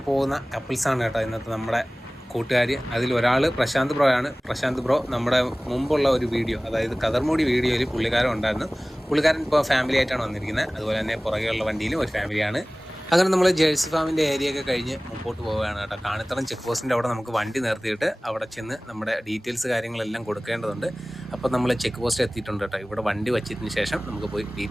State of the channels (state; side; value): normal; both; correlation 0.98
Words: പോകുന്ന കപ്പിൾസാണ് കേട്ടോ ഇന്നത്തെ നമ്മുടെ കൂട്ടുകാർ. അതിലൊരാൾ പ്രശാന്ത് ബ്രോ ആണ്. പ്രശാന്ത് ബ്രോ നമ്മുടെ മുമ്പുള്ള ഒരു വീഡിയോ, അതായത് കതർമൂടി വീഡിയോയിൽ പുള്ളിക്കാരൻ ഉണ്ടായിരുന്നു. പുള്ളിക്കാരൻ ഇപ്പോൾ ഫാമിലി ആയിട്ടാണ് വന്നിരിക്കുന്നത്. അതുപോലെ തന്നെ പുറകെയുള്ള വണ്ടിയിലും ഒരു ഫാമിലിയാണ്. അങ്ങനെ നമ്മൾ ജേഴ്സി ഫാമിൻ്റെ ഏരിയയൊക്കെ കഴിഞ്ഞ് മുമ്പോട്ട് പോവുകയാണ് കേട്ടോ. കാണിത്തറം ചെക്ക് പോസ്റ്റിൻ്റെ അവിടെ നമുക്ക് വണ്ടി നിർത്തിയിട്ട് അവിടെ ചെന്ന് നമ്മുടെ ഡീറ്റെയിൽസ് കാര്യങ്ങളെല്ലാം കൊടുക്കേണ്ടതുണ്ട്. അപ്പോൾ നമ്മൾ ചെക്ക് പോസ്റ്റ് എത്തിയിട്ടുണ്ട് കേട്ടോ. ഇവിടെ വണ്ടി വച്ചതിന് ശേഷം നമുക്ക് പോയി